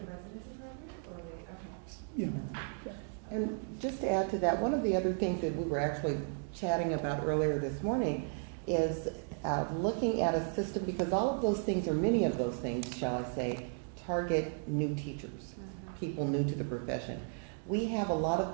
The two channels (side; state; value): left; silent; 55 dB below the other